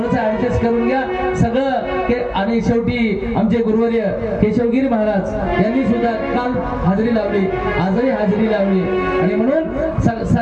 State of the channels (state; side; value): identical; both; correlation 1.00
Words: ऍडजस्ट करून घ्या सगळं आणि शेवटी आमचे गुरुवर्य केशवगिरी महाराज यांनी सुद्धा काल हाजरी लावली आजही हाजरी लावली आणि म्हणून